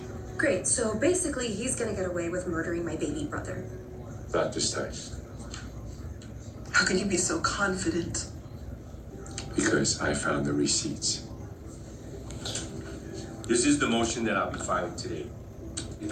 Great, so basically he's going to get away with murdering my baby brother. Not this time. How can you be so confident? Because I found the receipts. This is the motion that I'll be filing today.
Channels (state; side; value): identical; both; correlation 1.00